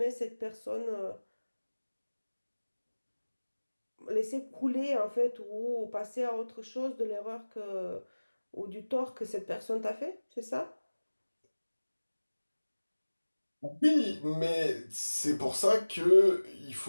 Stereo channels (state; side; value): inverted; both; correlation -1.00